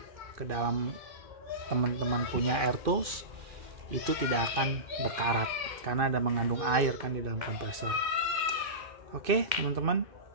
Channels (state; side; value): late; left; 2.4 ms